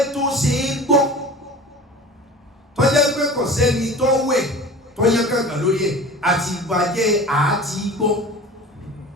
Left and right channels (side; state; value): both; normal; correlation 0.38